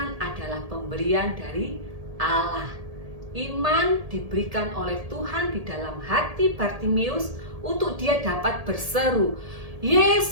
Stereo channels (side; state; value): left; late; 1.7 ms